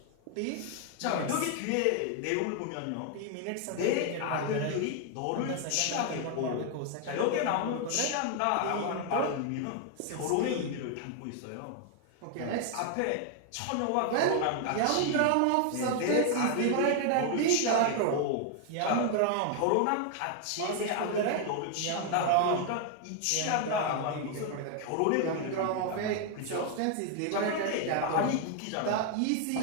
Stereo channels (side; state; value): both; different; correlation 0.00